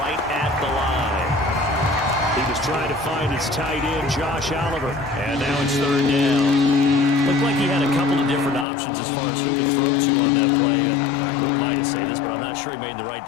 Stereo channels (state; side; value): drops out; right; at 8.7 s